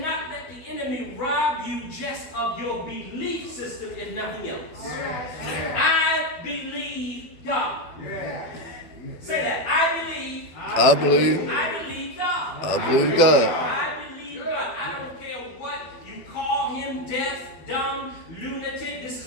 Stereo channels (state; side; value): late; right; 12 ms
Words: let the enemy rob you just of your belief system if nothing else. I believe God. Say that. I believe God. I believe God. I believe God. I believe God. I don't care what you call him, deaf, dumb, lunatic. This